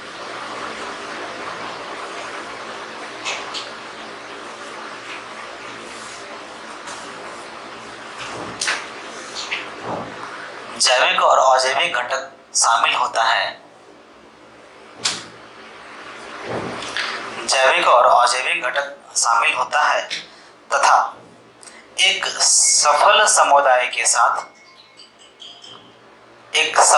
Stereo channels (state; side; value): identical; both; correlation 1.00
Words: जैविक और अजैविक घटक शामिल होता है, जैविक और अजैविक घटक शामिल होता है तथा एक सफल समुदाय के साथ, एक